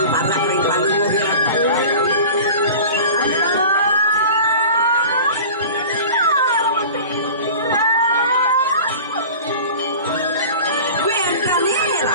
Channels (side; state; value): both; inverted; correlation -0.38